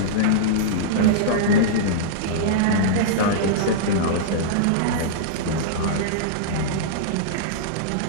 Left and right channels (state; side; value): different; both; correlation -0.03